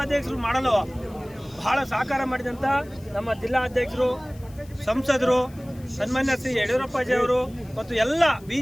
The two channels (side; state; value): left; noise; hiss, 26 dB below the sound